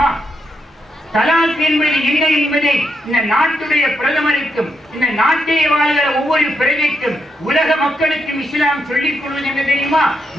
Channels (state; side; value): normal; both; correlation 0.81